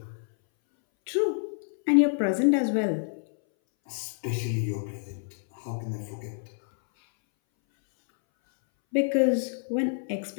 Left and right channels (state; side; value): silent; right; 60 dB below the other